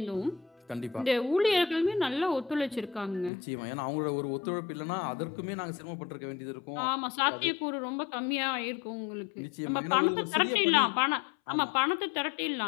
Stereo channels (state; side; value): drops out; right; at 3.3 s